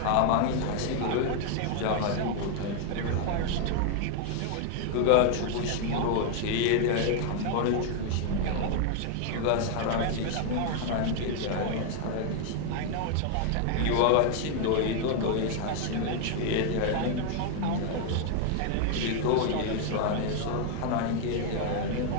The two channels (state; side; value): different; both; correlation 0.00